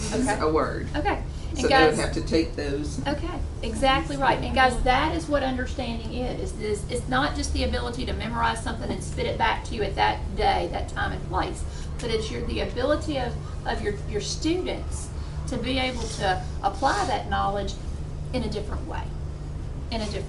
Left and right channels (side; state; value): both; identical; correlation 1.00